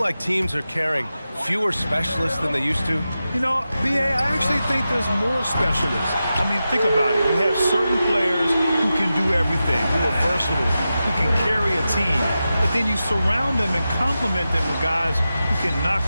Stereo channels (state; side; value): inverted; both; correlation -0.92